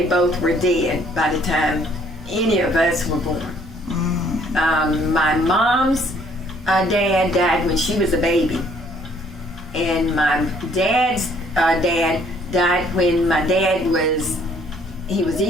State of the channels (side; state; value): both; normal; correlation 0.62